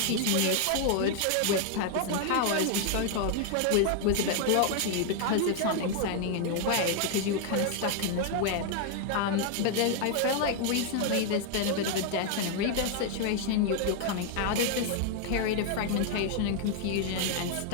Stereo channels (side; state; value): both; different; correlation 0.00